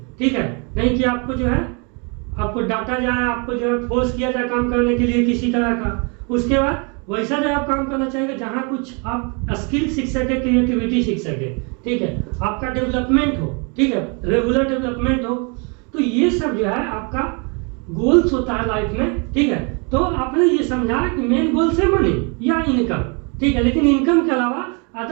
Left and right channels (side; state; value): left; quieter; 34.0 dB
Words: ठीक है, नहीं कि आपको जो है आपको डांटा जाए, आपको जो है फोर्स किया जाए काम करने के लिए किसी तरह का। उसके बाद वैसा जगह आप काम करना चाहिए जहाँ कुछ आप स्किल सीख सके, क्रिएटिविटी सीख सके, ठीक है, आपका डेवलपमेंट हो, ठीक है, रेगुलर डेवलपमेंट हो। तो ये सब जो है आपका गोल्स होता है लाइफ में। ठीक है, तो आपने ये समझा कि मेन गोल्स है मनी या इनकम, ठीक है, लेकिन इनकम के अलावा